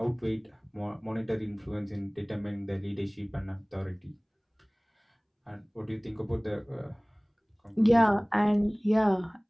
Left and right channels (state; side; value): identical; both; correlation 1.00